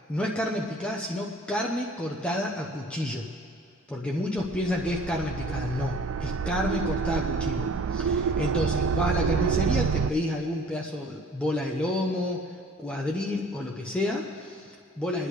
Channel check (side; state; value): both; normal; correlation 0.52